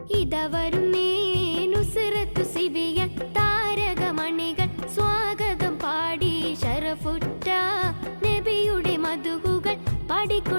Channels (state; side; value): inverted; both; correlation -1.00